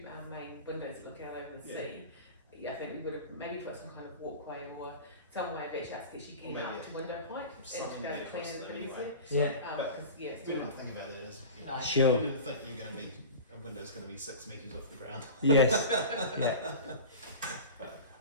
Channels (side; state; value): both; inverted; correlation -0.33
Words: main windows that look out over the Yeah. sea, yeah, I think we would have maybe put some kind of walkway or some way of actually getting Maybe up to window height something and to to clean across the it breeze anyway. Yeah. because yeah, we didn't think about it as No. Sure. You didn't think you're going to be a window's going to be 6 meters off the ground. Yes. Yeah. But